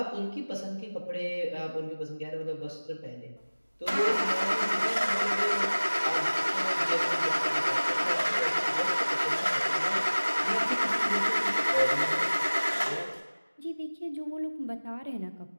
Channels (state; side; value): inverted; both; correlation -1.00